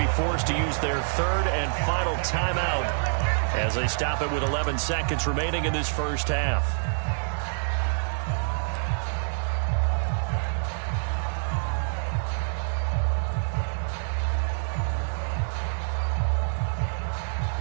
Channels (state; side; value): silent; left; digital silence